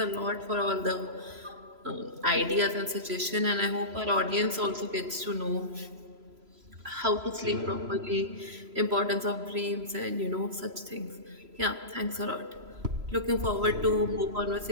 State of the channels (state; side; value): late; left; 3.0 ms